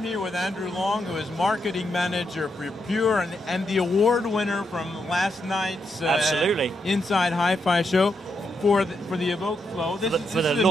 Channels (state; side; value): normal; both; correlation 0.81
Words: here with Andrew Long, who is marketing manager for Pure and the award winner from last night's absolutely Inside Hi-Fi show for the Evoke Flow. This is a